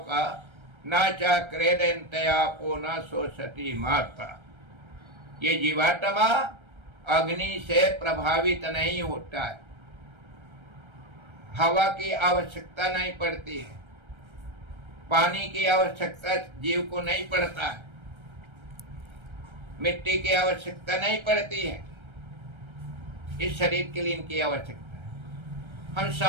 का, न चा क्रेदंतयापो न सोचती माता। ये जीवात्मा अग्नि से प्रभावित नहीं होता है। हवा की आवश्यकता नहीं पड़ती है, पानी की आवश्यकता जीव को नहीं पड़ता है, मिट्टी की आवश्यकता नहीं पड़ती है। इस शरीर के लिए इनकी आवश्यकता है। हम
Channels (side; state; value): left; late; 1.3 ms